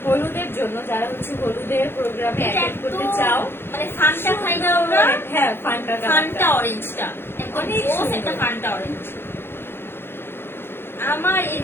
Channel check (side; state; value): right; late; 0.11 ms